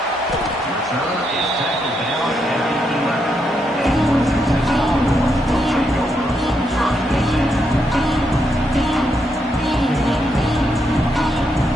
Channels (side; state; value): both; normal; correlation 0.80